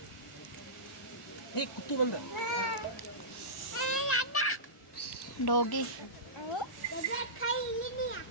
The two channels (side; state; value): both; normal; correlation -0.19